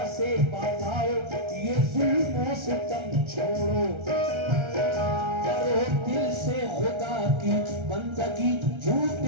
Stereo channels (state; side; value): late; left; 1.3 ms